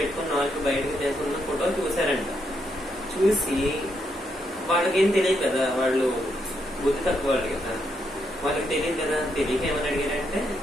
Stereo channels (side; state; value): both; normal; correlation 0.78